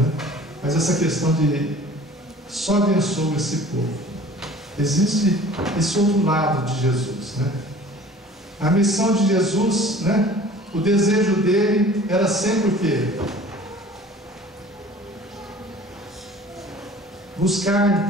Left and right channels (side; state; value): both; normal; correlation 0.47